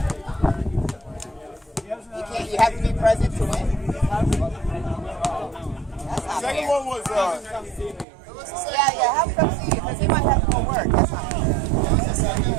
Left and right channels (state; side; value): drops out; left; at 8.1 s